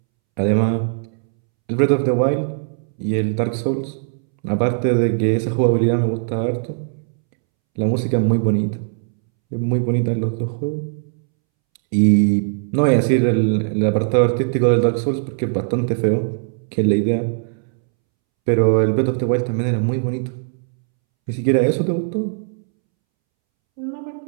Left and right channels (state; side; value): silent; left; 66 dB below the other